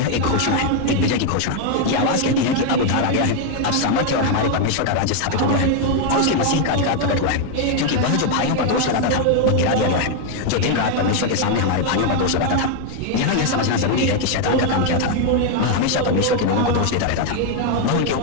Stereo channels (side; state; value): both; different; correlation 0.00